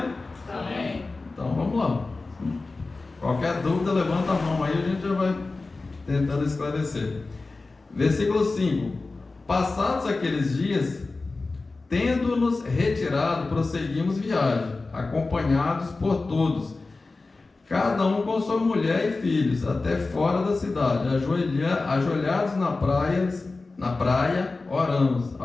Amém. Então vamos lá. Qualquer dúvida, levanta a mão aí, a gente já vai tentando esclarecer. Versículo 5: passados aqueles dias, tendo-nos retirado, prosseguimos viagem, acompanhados por todos, cada um com sua mulher e filhos, até fora da cidade, ajoelhados na praia, oramos.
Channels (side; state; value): right; quieter; 3.6 dB